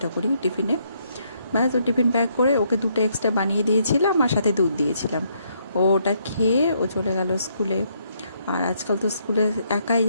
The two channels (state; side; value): inverted; both; correlation -0.72